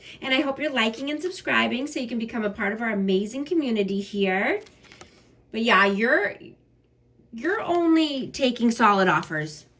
And I hope you're liking and subscribing so you can become a part of our amazing community here. But yeah, you're only taking solid offers,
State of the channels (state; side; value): identical; both; correlation 1.00